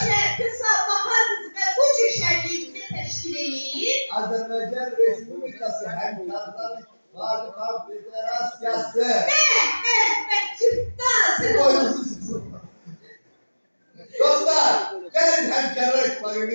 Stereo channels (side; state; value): both; inverted; correlation -1.00